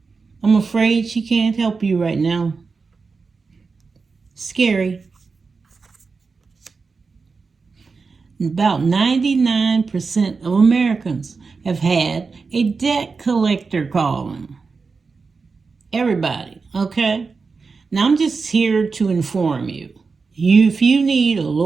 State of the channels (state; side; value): quieter; left; 4.6 dB